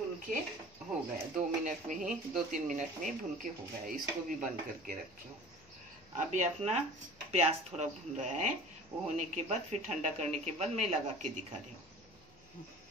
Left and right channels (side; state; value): left; noise; hum, 27 dB below the sound